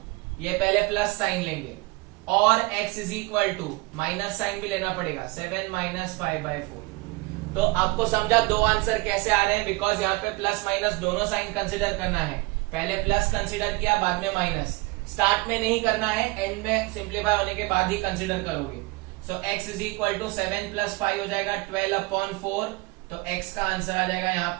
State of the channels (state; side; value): quieter; left; 24.0 dB